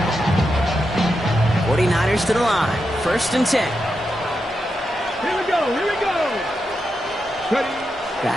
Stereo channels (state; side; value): normal; both; correlation 0.87